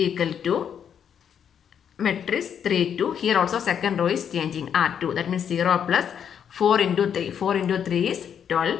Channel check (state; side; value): quieter; right; 8.3 dB